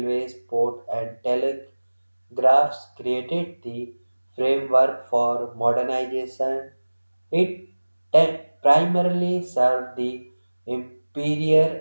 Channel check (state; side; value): inverted; both; correlation -1.00